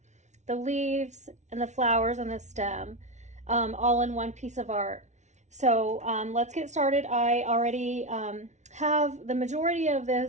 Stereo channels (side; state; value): left; late; 0.33 ms